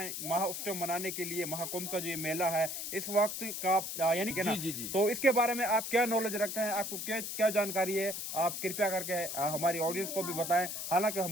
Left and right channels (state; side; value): noise; left; hiss, 5 dB below the sound